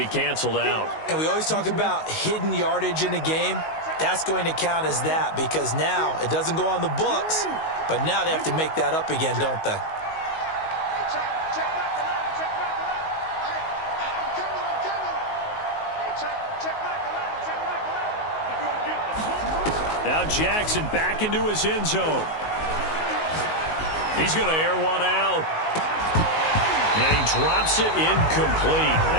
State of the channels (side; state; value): right; late; 19 ms